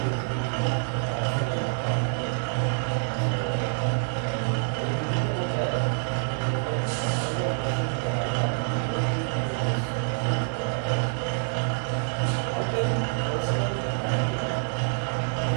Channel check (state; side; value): silent; left; 60 dB below the other